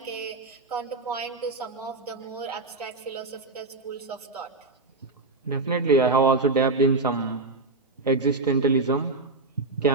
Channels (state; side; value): quieter; left; 3.4 dB